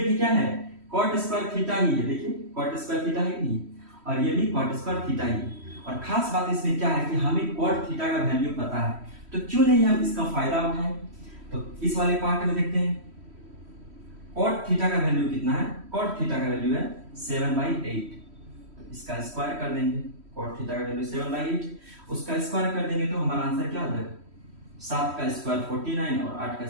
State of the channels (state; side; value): late; left; 3.1 ms